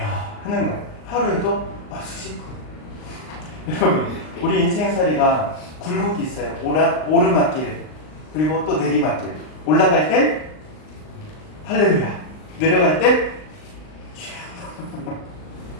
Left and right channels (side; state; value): right; late; 39 ms